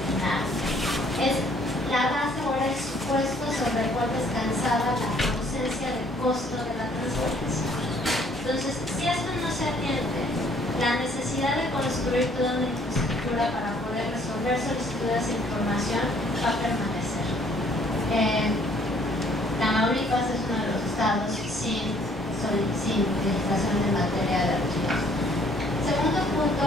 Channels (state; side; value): normal; both; correlation 0.61